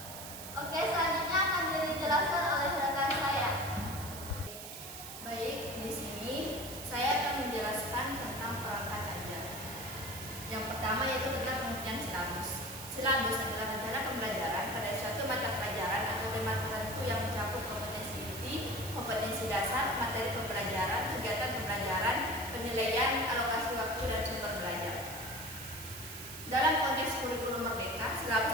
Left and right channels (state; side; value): noise; right; hiss, 10 dB below the sound